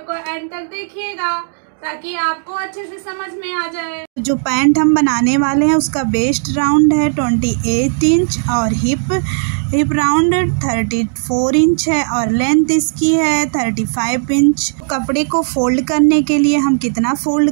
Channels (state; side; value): silent; left; digital silence